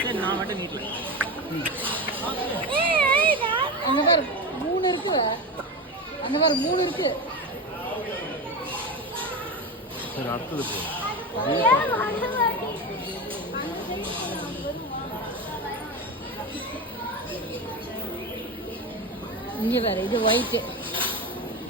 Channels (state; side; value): normal; both; correlation 0.21